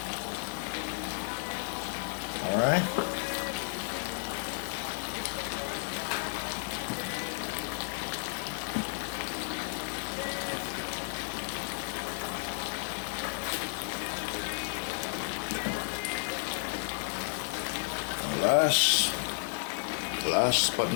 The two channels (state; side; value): silent; right; 56 dB below the other